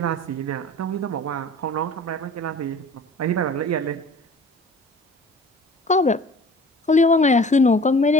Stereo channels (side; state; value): both; normal; correlation 0.46